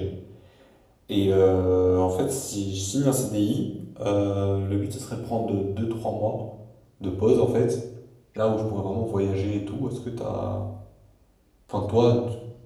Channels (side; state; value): both; identical; correlation 1.00